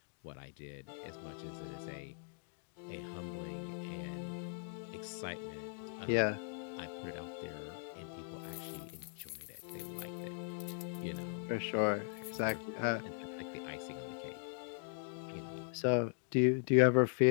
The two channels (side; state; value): right; silent; digital silence